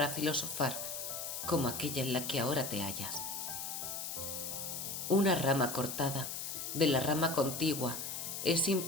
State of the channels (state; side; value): noise; left; hiss, 5 dB below the sound